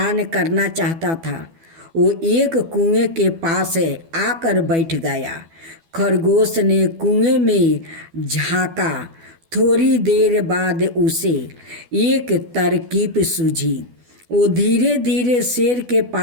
करना चाहता था। वो एक कुएं के पास आकर बैठ गया। खरगोश ने कुएं में झांका। थोड़ी देर बाद उसे एक तरकीब सूझी। वो धीरे धीरे शेर के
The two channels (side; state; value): left; late; 12 ms